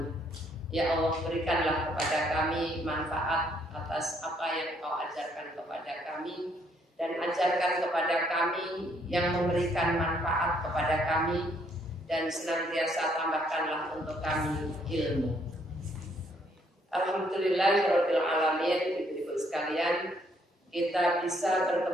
Ya Allah, berikanlah kepada kami manfaat atas apa yang Kau ajarkan kepada kami, dan ajarkan kepada kami yang memberikan manfaat kepada kami, dan senantiasa tambahkanlah untuk kami ilmu. Alhamdulillahirabbil alamin. Ibu-ibu sekalian, kita bisa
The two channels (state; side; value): normal; both; correlation 0.69